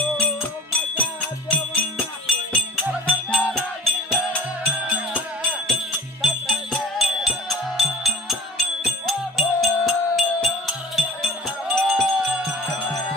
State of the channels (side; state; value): both; normal; correlation 0.44